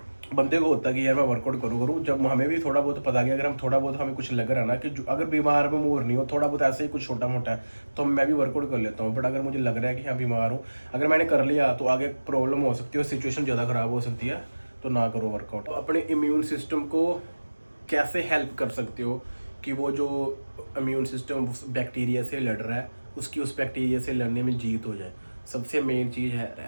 बंदे को होता है कि यार मैं वर्कआउट करूँ, जब हमें भी थोड़ा बहुत पता गया, अगर हम थोड़ा बहुत हमें कुछ लग रहा है ना कि अगर बीमार में मूर नहीं हो, थोड़ा बहुत ऐसे ही कुछ छोटा मोटा है, तो मैं भी वर्कआउट कर लेता हूँ। बट अगर मुझे लग रहा है कि हाँ बीमार हूँ, अगर मैंने कर लिया तो आगे प्रॉब्लम हो सकती है, सिचुएशन ज़्यादा ख़राब हो सकती है, तो ना करो वर्कआउट। अपने इम्यून सिस्टम को कैसे हेल्प कर सकते हो कि वो जो इम्यून सिस्टम उस बैक्टीरिया से लड़ रहा है, उसकी उस बैक्टीरिया से लड़ने में जीत हो जाए? सबसे मेन चीज़ है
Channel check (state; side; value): inverted; both; correlation -1.00